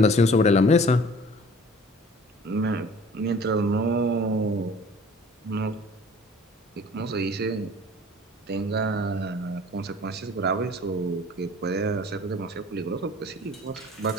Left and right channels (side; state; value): both; normal; correlation 0.48